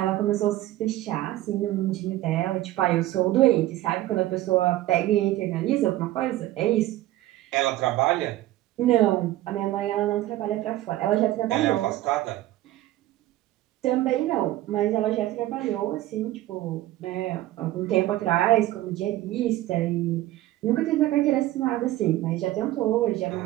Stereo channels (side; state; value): left; quieter; 15.4 dB